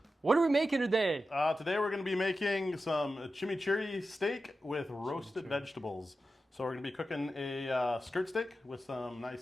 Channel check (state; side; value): normal; both; correlation 0.92